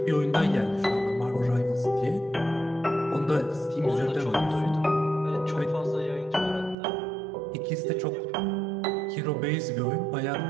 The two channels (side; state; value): left; drops out; at 6.8 s